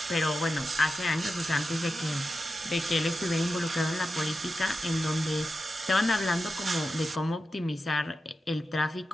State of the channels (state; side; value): normal; both; correlation 0.91